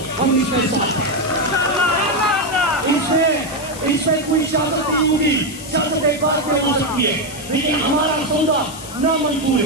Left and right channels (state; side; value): noise; left; hiss, 14 dB below the sound